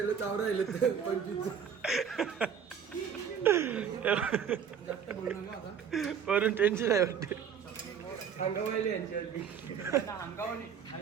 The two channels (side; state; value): left; quieter; 7.6 dB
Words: चावडा राहिले 25. वरून टेन्शन आहे वाटते. अंगावायले यांची